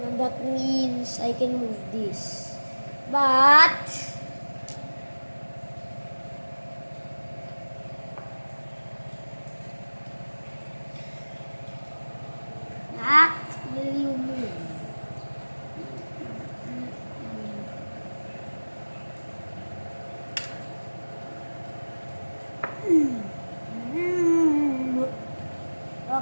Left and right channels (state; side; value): inverted; both; correlation -1.00